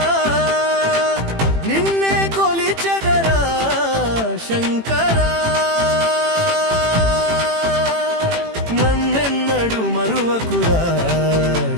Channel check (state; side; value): late; left; 18 ms